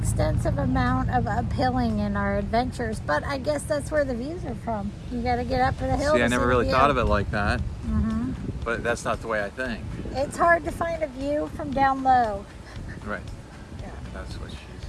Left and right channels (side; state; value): both; identical; correlation 1.00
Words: amount of uphilling in our adventures, but I guess that's where the views are from. You got to get up a hill. See, to I never the really view. thought of it like that, Mhm. but that's not the way I think. It's hard to find a view from down low. Right. Yeah. That's what